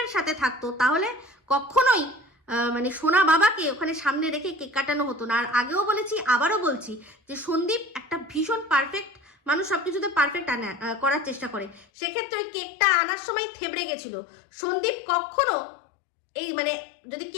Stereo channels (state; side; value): drops out; right; at 11.9 s